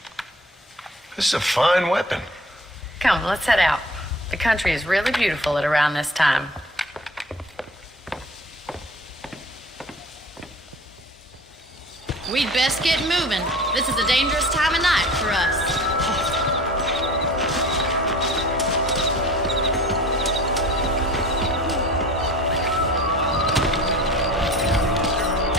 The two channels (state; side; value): normal; both; correlation 0.43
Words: This is a fine weapon. Come, let's head out. The country is really beautiful at around this time. We'd best get moving. This is a dangerous time of night for us.